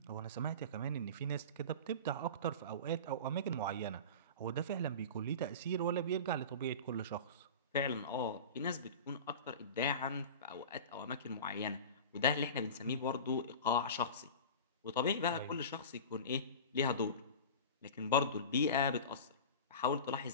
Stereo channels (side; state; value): both; inverted; correlation -0.32